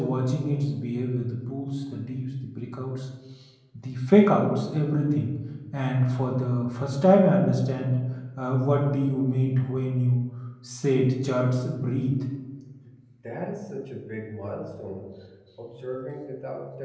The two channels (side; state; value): both; identical; correlation 1.00